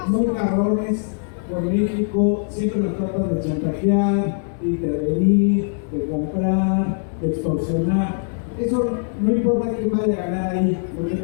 muy cabrones con México, siempre nos tratan de chantajear, de intervenir, de comprar, de extorsionar. Eso no importa quién vaya a ganar ahí. Lo que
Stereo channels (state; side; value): silent; right; digital silence